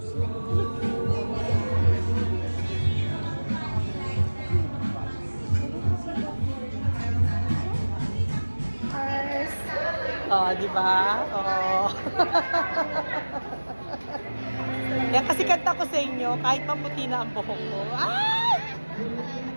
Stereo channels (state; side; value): inverted; both; correlation -1.00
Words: Oh, di ba? Oh. Yan kasi kanta ko sa inyo, kahit maputi na ang buhok ko. Ay!